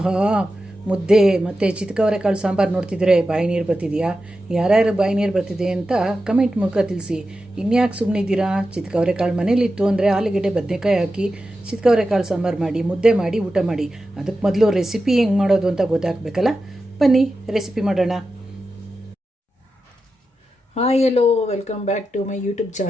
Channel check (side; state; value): both; normal; correlation 0.91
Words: ಮುದ್ದೆ ಮತ್ತು ಚಿತ್ಕವರೆಕಾಳು ಸಾಂಬಾರು ನೋಡ್ತಿದ್ರೆ ಬಾಯಿ ನೀರು ಬರ್ತಿದೆಯಾ? ಯಾರ್ಯಾರು ಬಾಯಿ ನೀರು ಬರ್ತಿದೆ ಅಂತ ಕಮೆಂಟ್ ಮೂಲಕ ತಿಳಿಸಿ. ಇನ್ಯಾಕೆ ಸುಮ್ಮನಿದ್ದೀರಾ? ಚಿತ್ಕವರೆಕಾಳು ಮನೇಲಿತ್ತು ಅಂದರೆ ಆಲೂಗೆಡ್ಡೆ ಬದನೆಕಾಯಿ ಹಾಕಿ ಚಿತ್ಕವರೆಕಾಳು ಸಾಂಬಾರು ಮಾಡಿ ಮುದ್ದೆ ಮಾಡಿ ಊಟ ಮಾಡಿ. ಅದಕ್ಕೆ ಮೊದಲು ರೆಸಿಪಿ ಹೆಂಗೆ ಮಾಡೋದು ಅಂತ ಗೊತ್ತಾಗಬೇಕಲ್ಲ. ಬನ್ನಿ ರೆಸಿಪಿ ಮಾಡೋಣ. Hi hello, welcome back to my YouTube